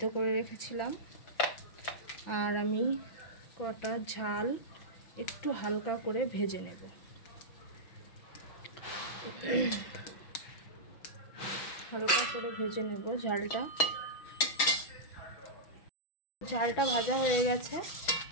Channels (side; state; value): right; late; 5.8 ms